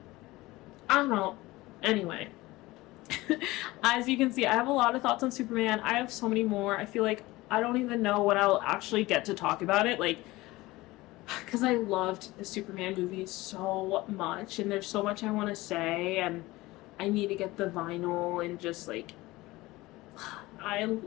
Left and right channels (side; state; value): right; quieter; 19.7 dB